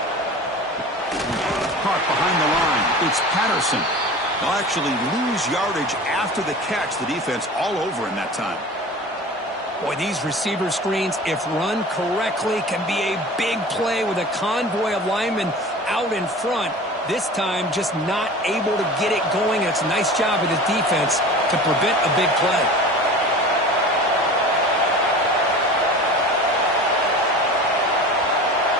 Caught behind the line. It's Patterson. They'll actually lose yardage after the catch. The defense all over in that time. Boy, these receiver screens, if run correctly, can be a big play with a convoy of linemen out in front. This time, just not able to get it going. And it's a nice job of the defense to prevent a big play.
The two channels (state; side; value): normal; both; correlation 0.37